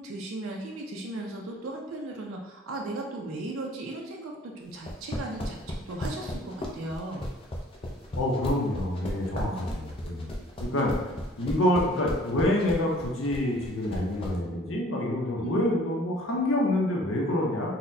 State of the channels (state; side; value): normal; both; correlation 0.54